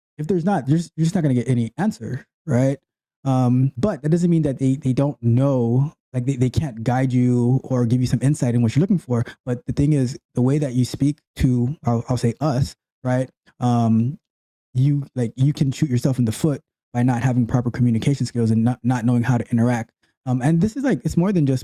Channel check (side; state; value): both; identical; correlation 1.00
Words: there's not, you're just not going to get any answer, right? But that doesn't mean that they don't know, like they can't guide you or give you some insight in what you're looking for. But the thing is, the way that you speak to, I'll say us, right? You can shoot yourself in the foot by not having proper communication skills and not knowing how to interact. And this is like, it's more than